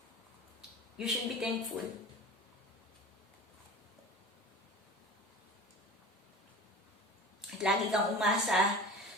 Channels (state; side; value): normal; both; correlation 0.35